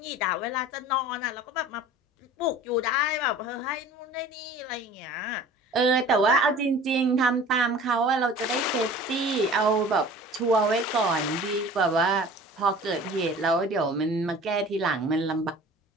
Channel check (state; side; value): normal; both; correlation 0.43